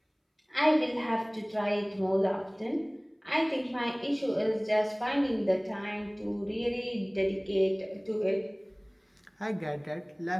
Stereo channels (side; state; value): both; identical; correlation 1.00